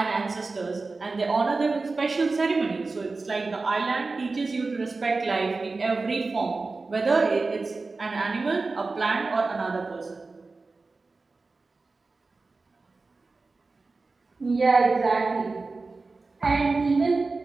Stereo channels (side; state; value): left; quieter; 3.8 dB